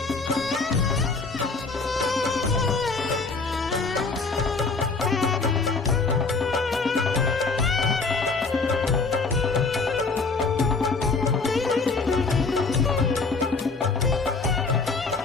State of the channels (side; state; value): right; quieter; 4.2 dB